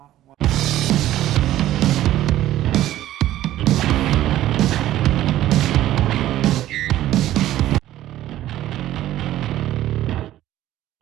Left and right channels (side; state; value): left; quieter; 13.8 dB